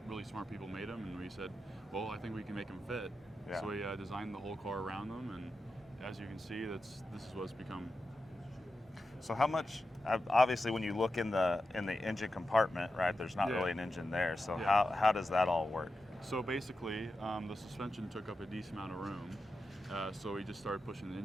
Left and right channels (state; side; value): normal; both; correlation 0.90